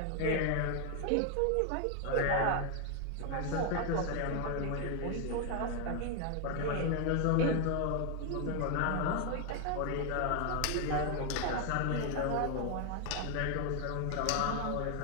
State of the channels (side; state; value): both; different; correlation 0.00